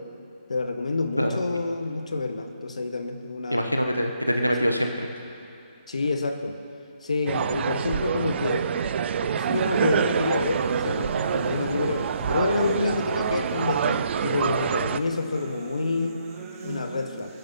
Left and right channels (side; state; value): both; inverted; correlation -0.72